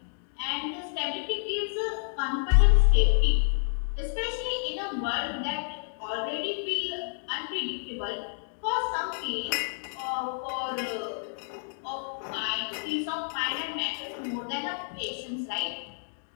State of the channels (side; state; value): right; silent; digital silence